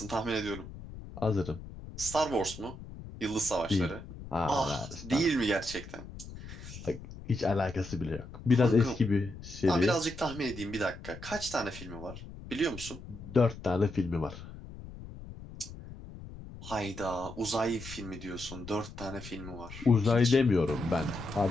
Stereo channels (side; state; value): left; noise; rumble, 13 dB below the sound